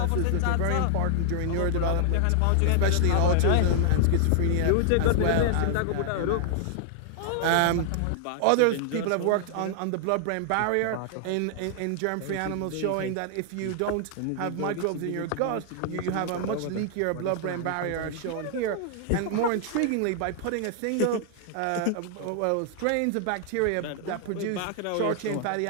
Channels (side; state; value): both; different; correlation 0.00